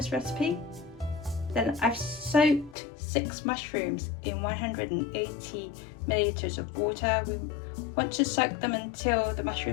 recipe. Then I've soaked 6 mushrooms in 180 milliliters of water. We want to soak them until the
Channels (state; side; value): drops out; right; at 2.8 s